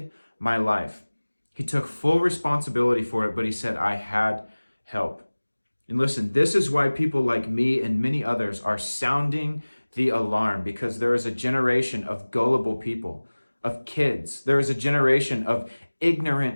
my life. He took full responsibility for it, but he said, I had help. And listen, this is why people like me and many others are sounding the alarm, because there is a generation of gullible people, of kids. There is a generation of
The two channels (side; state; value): both; inverted; correlation -1.00